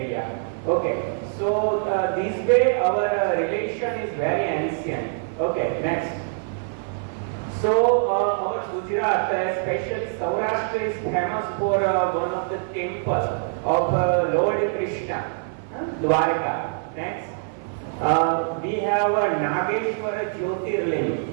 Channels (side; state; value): left; silent; 55 dB below the other